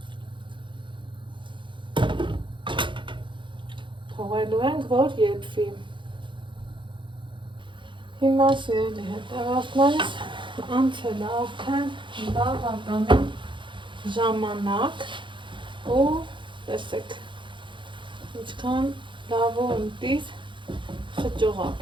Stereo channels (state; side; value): late; left; 0.23 ms